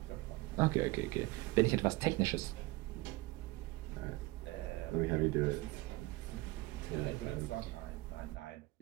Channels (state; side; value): quieter; left; 20.9 dB